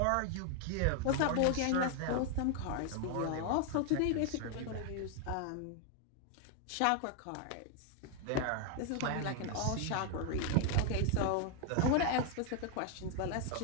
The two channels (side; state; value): both; different; correlation 0.00